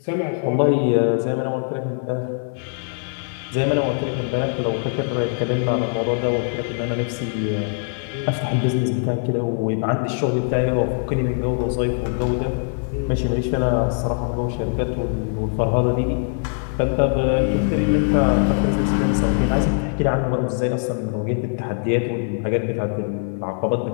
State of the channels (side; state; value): right; silent; 64 dB below the other